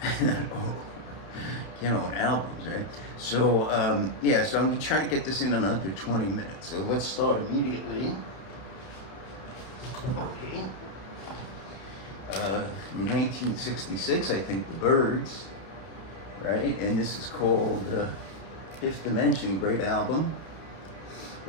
owe. Can't own albums, right? So so I'm gonna try to get this in under 20 minutes. So let's start immediately. Okay. 1966, I think, The Byrds. Right, and this is called Fifth Dimension, great album.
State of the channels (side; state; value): right; late; 31 ms